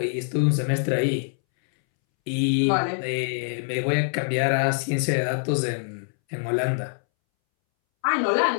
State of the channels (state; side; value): silent; right; 62 dB below the other